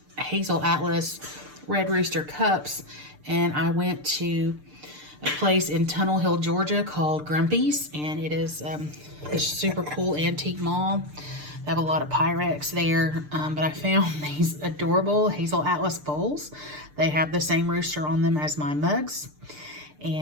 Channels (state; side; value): late; left; 6.7 ms